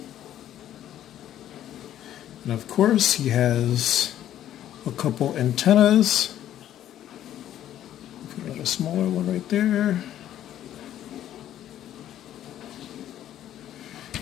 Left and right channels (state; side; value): quieter; right; 11.7 dB